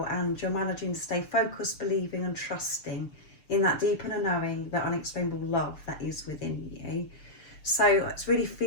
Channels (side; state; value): right; late; 6.7 ms